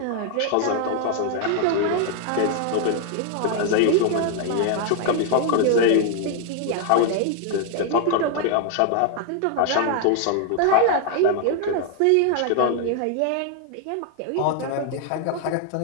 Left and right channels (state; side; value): different; both; correlation 0.00